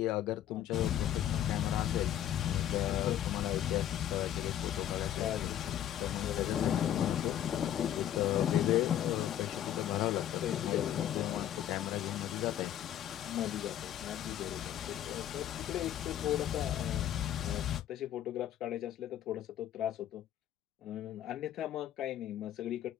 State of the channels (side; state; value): right; quieter; 11.3 dB